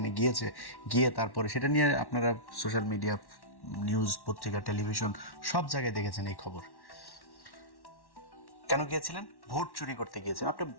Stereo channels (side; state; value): right; late; 1.1 ms